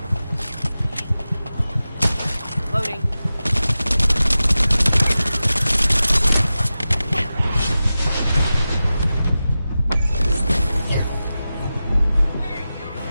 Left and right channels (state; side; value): inverted; both; correlation -0.94